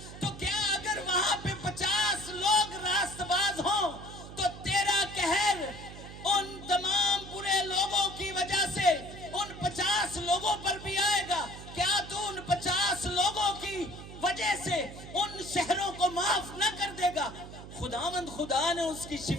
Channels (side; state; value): right; noise; hum, 13 dB below the sound